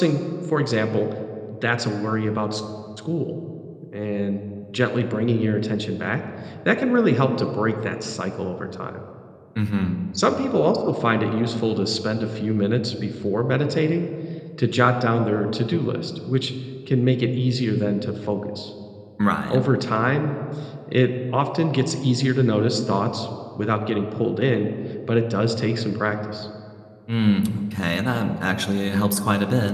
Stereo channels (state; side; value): identical; both; correlation 1.00